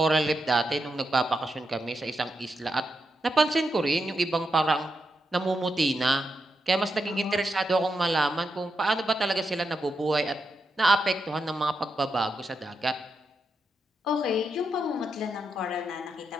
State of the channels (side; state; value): both; normal; correlation 0.85